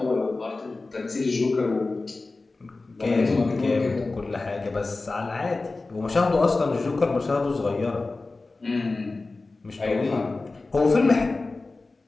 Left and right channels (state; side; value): quieter; right; 3.5 dB